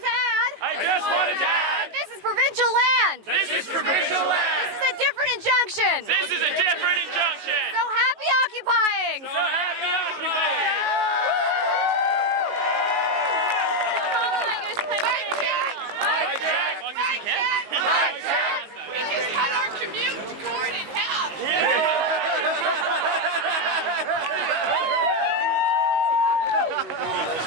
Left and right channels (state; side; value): late; left; 19 ms